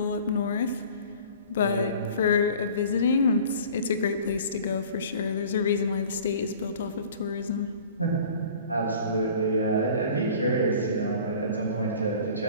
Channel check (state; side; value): inverted; both; correlation -0.46